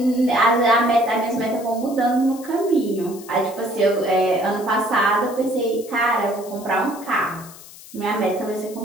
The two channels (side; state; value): left; noise; hiss, 18 dB below the sound